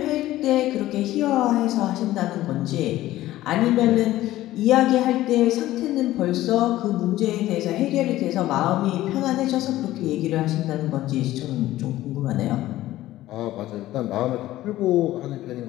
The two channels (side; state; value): right; quieter; 15.3 dB